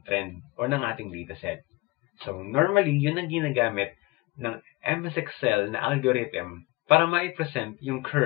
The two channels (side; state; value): right; quieter; 23.0 dB